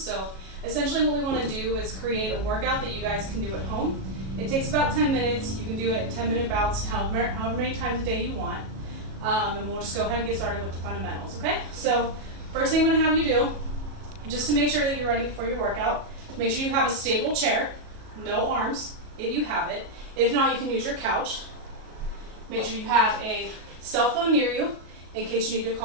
so essentially what we want to do is create a workout that you guys can do at home. It takes about 10 minutes. You can do it in 10-minute bouts, however many times a day you want. And we'll just go ahead and get started with the fundamentals, okay? So first thing I'm going to have you do, just to make sure that you're ready for your workout, make sure you have a stable chair, no arms, if you have it. If not, you can use your couch. Make sure you have a cell phone near you in case you need to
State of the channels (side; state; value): left; late; 37 ms